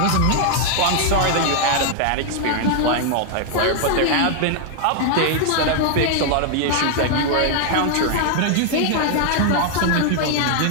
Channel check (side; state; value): both; different; correlation 0.00